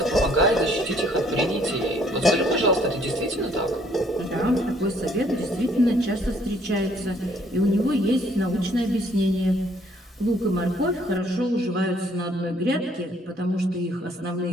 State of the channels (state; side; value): normal; both; correlation 0.63